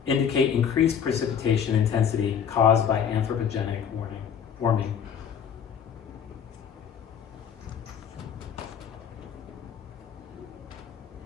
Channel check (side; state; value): right; quieter; 7.9 dB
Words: indicate increased precipitation intensity caused by anthropogenic warming.